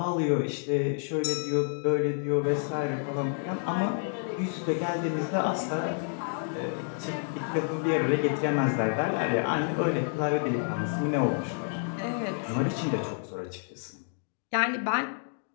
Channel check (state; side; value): silent; right; 56 dB below the other